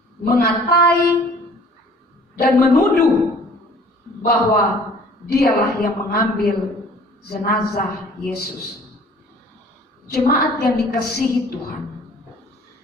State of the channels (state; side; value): normal; both; correlation 0.52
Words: mengatai dan menuduh bahwa dialah yang mengambil jenazah Yesus. Jemaat yang dikasihi Tuhan,